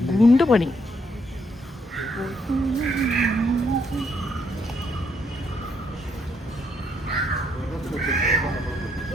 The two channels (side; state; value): both; normal; correlation 0.73